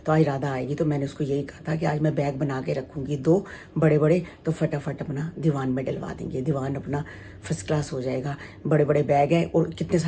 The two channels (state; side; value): identical; both; correlation 1.00